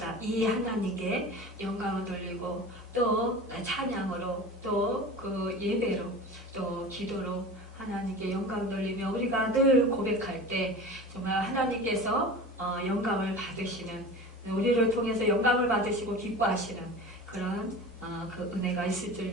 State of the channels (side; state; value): both; normal; correlation 0.34